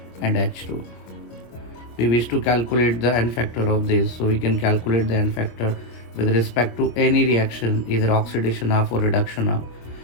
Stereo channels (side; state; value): right; late; 25 ms